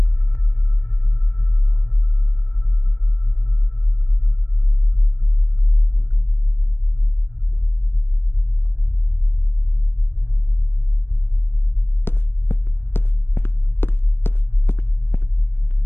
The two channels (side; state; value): right; late; 0.11 ms